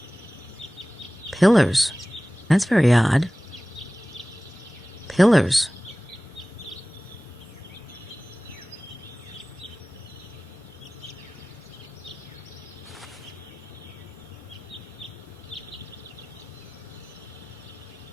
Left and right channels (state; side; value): normal; both; correlation 0.98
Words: Pillars. That's very odd. Pillars.